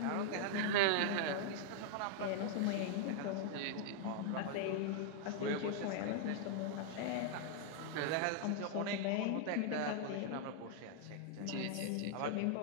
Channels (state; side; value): different; both; correlation 0.00